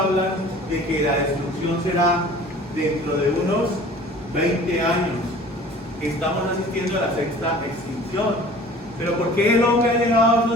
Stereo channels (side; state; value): both; normal; correlation 0.46